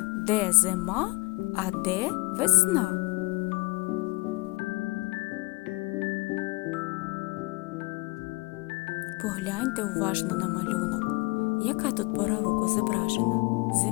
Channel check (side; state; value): right; quieter; 25.1 dB